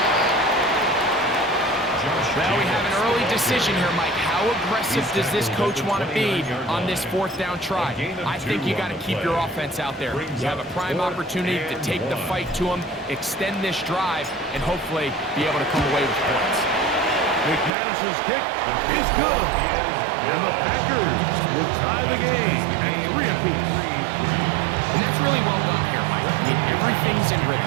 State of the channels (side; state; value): left; drops out; at 17.7 s